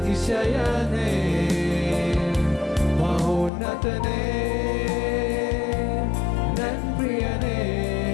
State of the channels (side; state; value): right; drops out; at 3.5 s